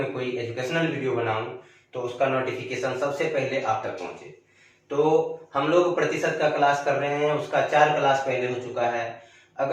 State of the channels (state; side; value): identical; both; correlation 1.00